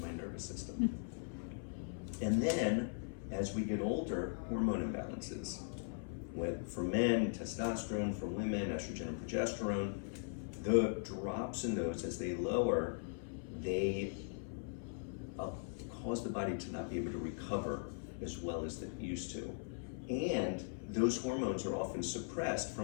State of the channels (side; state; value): right; silent; 51 dB below the other